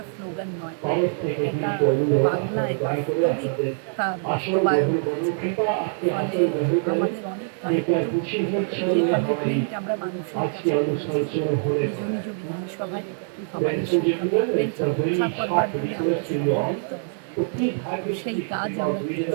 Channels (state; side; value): silent; left; digital silence